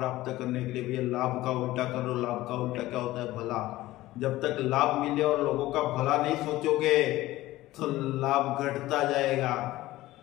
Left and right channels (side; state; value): right; quieter; 16.8 dB